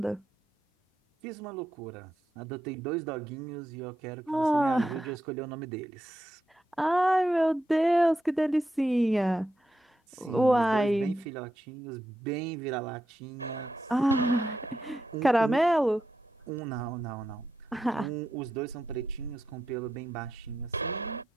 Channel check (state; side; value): normal; both; correlation 0.85